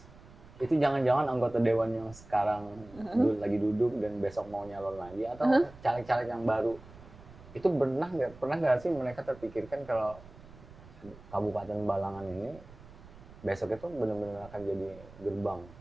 Itu jangan-jangan anggota dewan yang sekarang lagi duduk dan besok mau nyalon lagi atau caleg-caleg yang baru. Itu pernah nggak sih mereka terpikirkan kalau Kabupaten Balangan ini besok itu benar-benar akan jadi gerbang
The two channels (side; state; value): right; noise; rumble, 20 dB below the sound